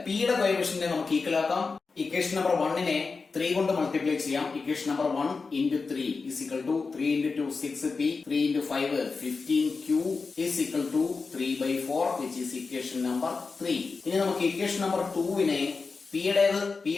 p യുടെ കോഎഫിഷ്യന്റിനെ നമുക്ക് ഈക്വൽ ആക്കാം. ഇക്വേഷൻ നമ്പർ 1നെ 3 കൊണ്ട് മൾട്ടിപ്ലൈ ചെയ്യാം. Equation number 1 into 3 is equal to 3 into 2 6p 3 into 5 15q is equal to 3/4 which is equation number 3. ഇനി നമുക്ക് ഇക്വേഷൻ നമ്പർ 2നെ p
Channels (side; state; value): right; quieter; 4.5 dB